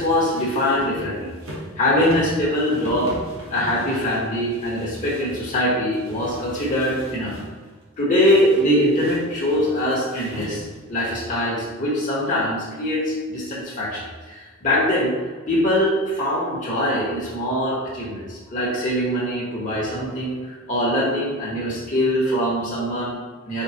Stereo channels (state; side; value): normal; both; correlation 0.25